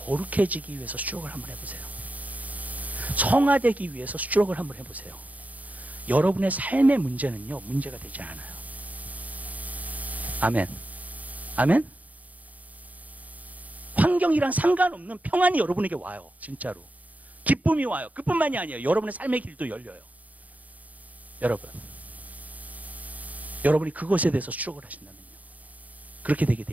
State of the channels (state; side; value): late; left; 0.075 ms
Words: 위해서 수주록을 한번 해보세요. 성화되기 위해서 수주록을 한번 해보세요. 여러분의 삶의 문제는요, 문제가 되지 않아요. 아멘. 아멘. 환경이랑 상관없는 평안이 여러분에게 와요. 진짜로. 기쁨이 와요. 그뿐만이 아니에요. 여러분의 삶의 길도 열려요. 여러분, 여러분이 그것에 대해서 수록을 하신다면요, 그렇게 되게